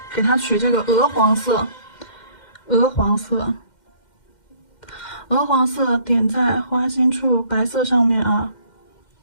给它取这个鹅黄色，鹅黄色点在花心处，白色上面啊。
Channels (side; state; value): right; late; 2.1 ms